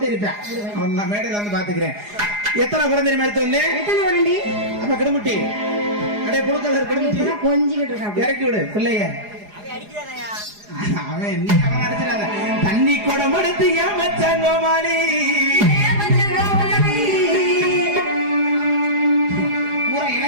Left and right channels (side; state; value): left; late; 4.8 ms